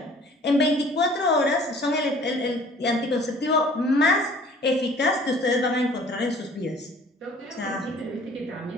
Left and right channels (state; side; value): normal; both; correlation 0.51